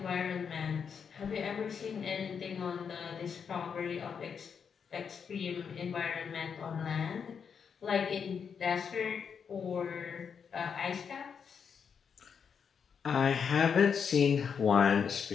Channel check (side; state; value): right; quieter; 6.7 dB